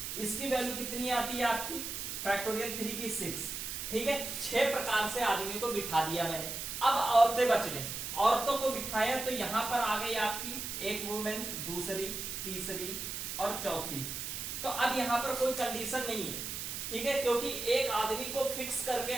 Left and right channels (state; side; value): noise; right; hiss, 5 dB below the sound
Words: इसकी वैल्यू कितनी आती है आपकी, फैक्टोरियल 3 की 6, ठीक है। 6 प्रकार से आदमियों को बिठा दिया मैंने। अब औरतें बच गई, औरतों को बिठाया, तो यहां पर आ गई आपकी एक वुमेन, दूसरी, तीसरी और चौथी। तो अब यहां पर कोई कंडीशन नहीं है, ठीक है, क्योंकि एक आदमी को फिक्स करके